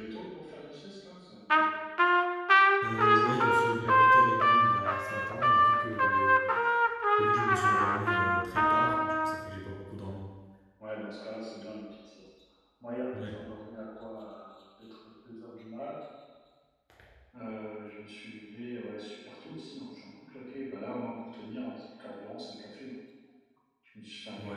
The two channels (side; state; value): both; identical; correlation 1.00